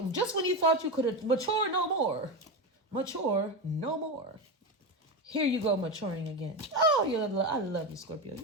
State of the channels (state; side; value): normal; both; correlation 0.17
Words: just when you thought you could mature no more, here you go maturing again. Oh, I love you, Scorpio.